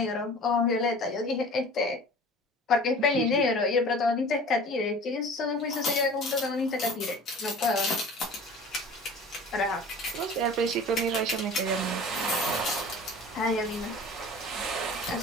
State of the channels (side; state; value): both; normal; correlation 0.42